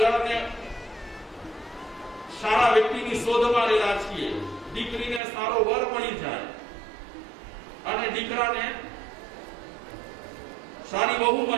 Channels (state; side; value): drops out; left; at 5.2 s